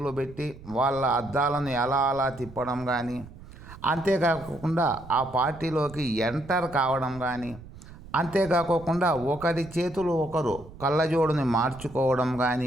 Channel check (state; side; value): noise; right; rumble, 17 dB below the sound